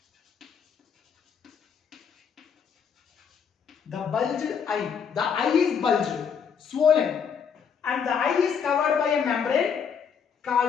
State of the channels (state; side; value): quieter; right; 6.9 dB